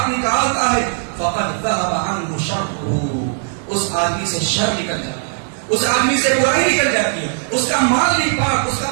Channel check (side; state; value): left; silent; 59 dB below the other